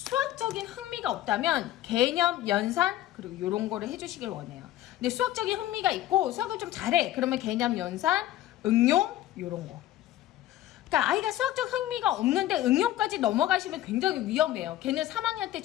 흥미가 없다면 개념, 연산, 그리고 이런 거를 해주시길 원해요. 근데 수학적인 흥미가 있고 수학을 좀 잘해. 그러면 개념, 연산, 응용, 이런 거. 그러니까 아이가 수학적 흥미가 없는데 응용까지 넘어가시면 굉장히 위험해요. 걔는 3학년 때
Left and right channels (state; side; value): quieter; right; 14.0 dB